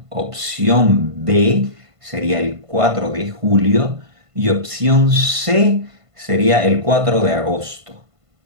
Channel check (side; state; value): left; late; 1.5 ms